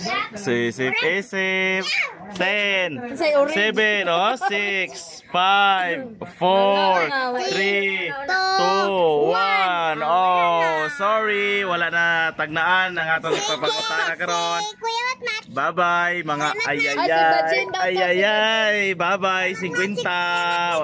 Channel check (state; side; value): identical; both; correlation 1.00